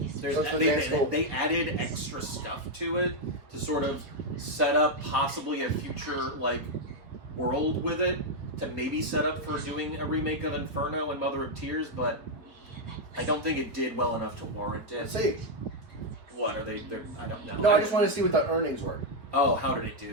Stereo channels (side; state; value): left; late; 4.3 ms